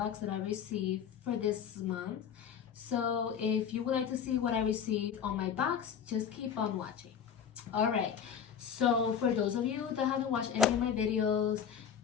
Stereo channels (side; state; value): right; quieter; 8.0 dB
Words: that I received for this month. So if you would like to see what I received on my box, just keep on watching. Alright, so for those of you that haven't watched any of my videos,